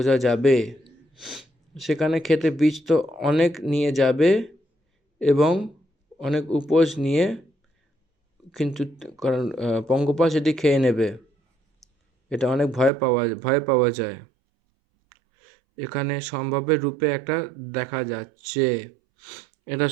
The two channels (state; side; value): drops out; left; at 12.9 s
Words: যাবে। সেখানে খেতে বীজ তো অনেক নিয়ে যাবে এবং অনেক উপোস নিয়ে, কিন্তু কারণ পঙ্গপাল সেটি খেয়ে নেবে, এটা অনেক ভয় পাওয়া যায়। এখানে সম্ভাব্যের রূপে একটা দেখা যাচ্ছে, এটা